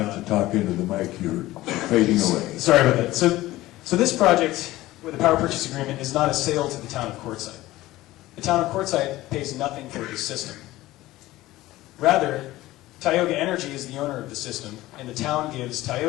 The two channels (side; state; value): right; quieter; 17.0 dB